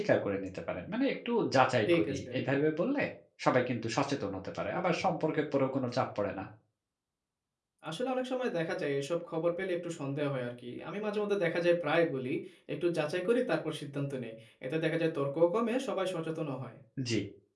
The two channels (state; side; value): identical; both; correlation 1.00